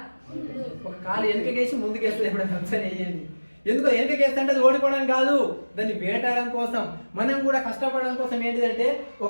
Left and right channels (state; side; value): inverted; both; correlation -1.00